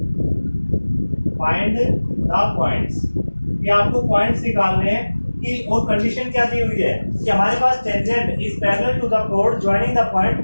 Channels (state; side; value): inverted; both; correlation -1.00